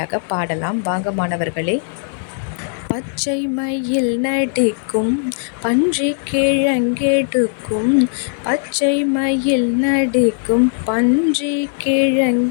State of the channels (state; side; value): silent; right; digital silence